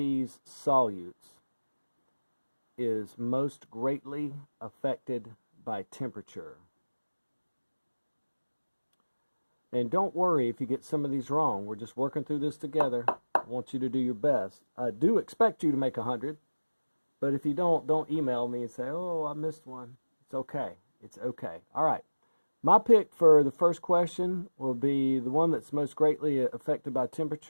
solutes is most greatly affected by temperature? And don't worry if you get some of these wrong. We're just working through this together. I want you to do your best. I do expect you to make 100. But if you don't email me and say, oh, I missed one. It's okay. It's okay. All right. My pick for the first question will be the one that's most greatly affected by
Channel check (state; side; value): inverted; both; correlation -1.00